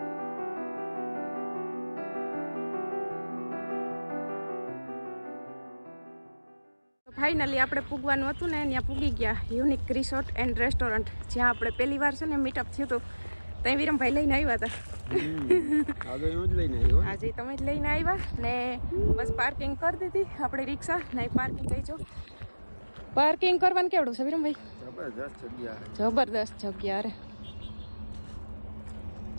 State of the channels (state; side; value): inverted; both; correlation -1.00